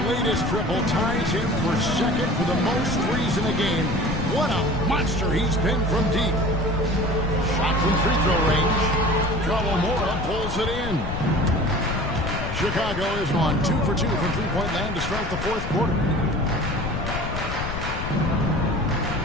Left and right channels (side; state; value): left; noise; rumble, 5 dB below the sound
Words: latest triple ties him for second for the most threes in a game. What a monster he's been from deep. Shot from free throw range. Kawamura pulls it in. Chicago is on 2 for 2 from three-point land to start the fourth quarter.